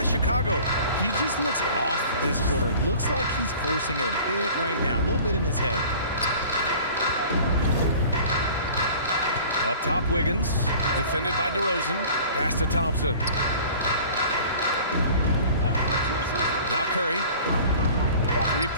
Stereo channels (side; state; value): both; inverted; correlation -0.45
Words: Chicago. He just looks off this quarter. Looks like he's forcing it a bit right now. A little bit in his head. Up top, Wiggins. Defended by DeRozan. Pass to Thompson. Now Curry.